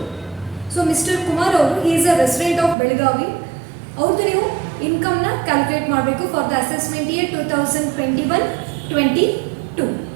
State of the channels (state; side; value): drops out; left; at 2.8 s